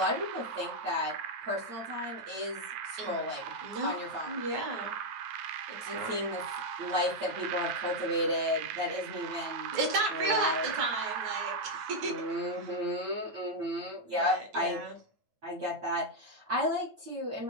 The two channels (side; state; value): left; late; 9.3 ms